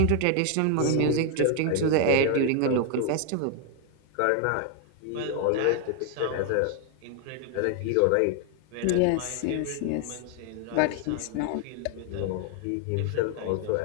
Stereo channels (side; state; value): both; different; correlation 0.00